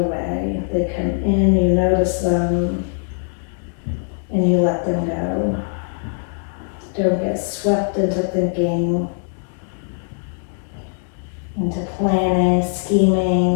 They come in, you notice them, and you let them go. Don't get swept into thinking, into planning,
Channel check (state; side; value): silent; right; 60 dB below the other